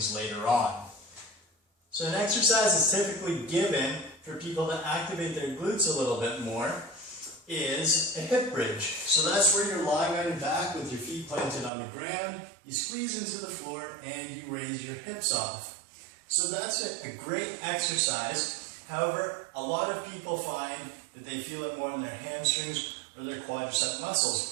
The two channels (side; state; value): left; drops out; at 11.7 s